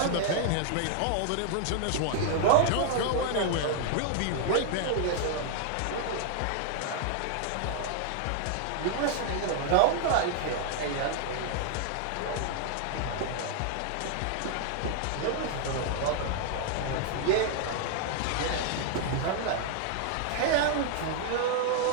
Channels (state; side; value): different; both; correlation 0.00